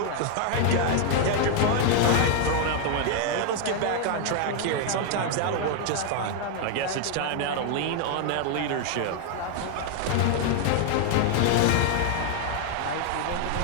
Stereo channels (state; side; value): different; both; correlation 0.00